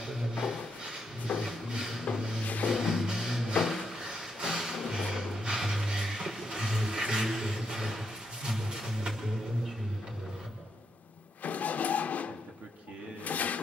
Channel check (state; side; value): normal; both; correlation 0.80